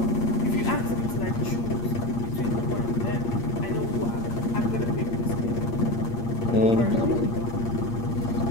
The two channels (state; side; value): late; right; 8.6 ms